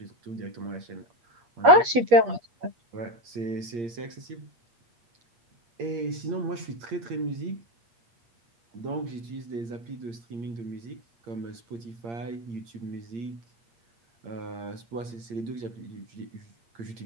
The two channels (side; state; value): left; late; 8.4 ms